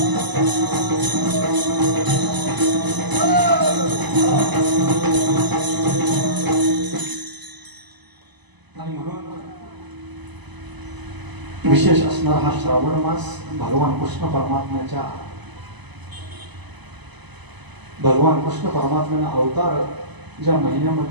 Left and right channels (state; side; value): late; left; 1.0 ms